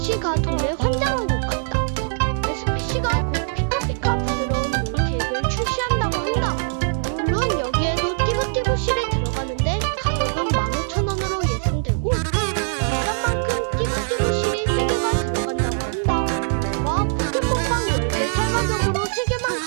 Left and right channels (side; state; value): left; silent; digital silence